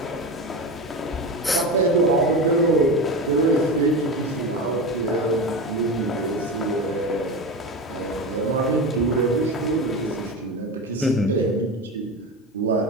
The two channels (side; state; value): both; normal; correlation 0.23